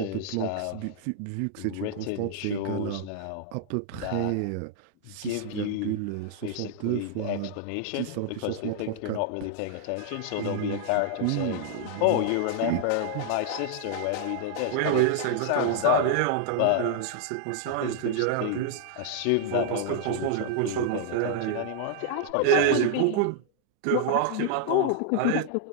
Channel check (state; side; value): different; both; correlation -0.01